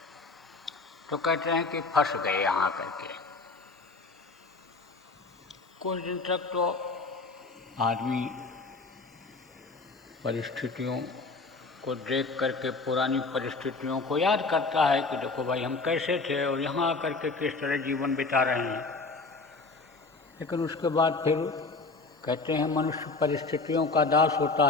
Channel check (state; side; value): quieter; right; 3.9 dB